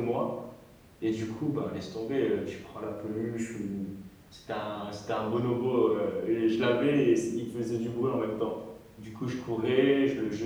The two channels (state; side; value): identical; both; correlation 1.00